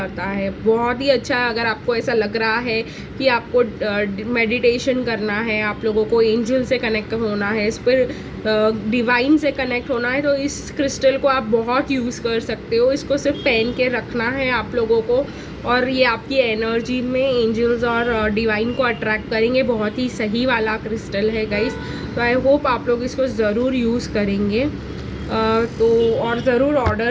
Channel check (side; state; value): both; identical; correlation 1.00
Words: है। बहुत ही अच्छा है। अगर आपको ऐसा लग रहा है कि आपको मेडिटेशन करना है, आप लोगों को एंजल से कनेक्ट होना है, इस पर डिवाइन से कनेक्ट होना है, तो इस क्रिस्टल को आप बहुत यूज़ कर सकते हो। इसको सिर्फ पहन के रखना है आप लोगों को और ये आपकी एनर्जी में एंजल्स और डिवाइन को अट्रैक्ट करेंगे। बहुत ही सही वाला क्रिस्टल है गाइस। तो आई होप आप लोग इसको ज़रूर यूज़ करेंगे तो और ज़रूर